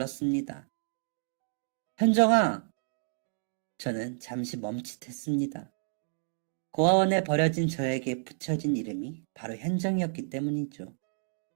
현정아! 저는 잠시 멈칫했습니다. 고아원에 버려진 저에게 붙여진 이름이 바로 현정이었기 때문이죠.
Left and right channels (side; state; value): left; silent; digital silence